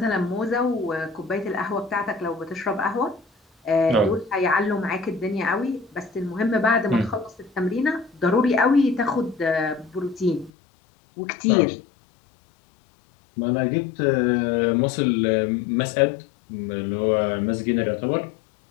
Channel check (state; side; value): drops out; right; at 10.5 s